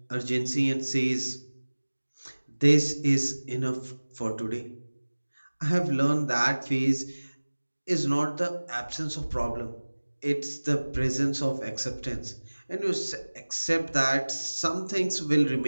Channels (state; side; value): inverted; both; correlation -1.00